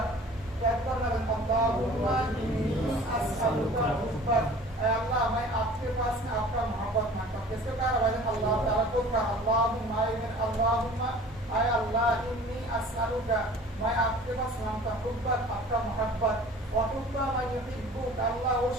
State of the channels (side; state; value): both; normal; correlation 0.46